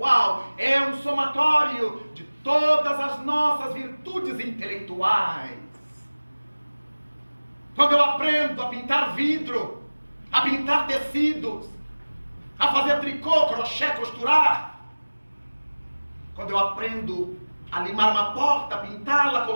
é um somatório de todas as nossas virtudes intelectuais. Quando eu aprendo a pintar vidro, a pintar tecidos, a fazer tricô, crochê, costurar, quando eu aprendo a limar uma porta, pintá-la,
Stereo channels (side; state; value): both; inverted; correlation -1.00